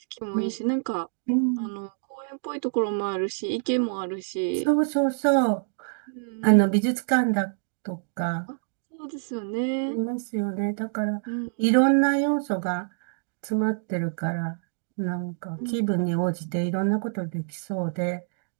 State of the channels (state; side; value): silent; left; digital silence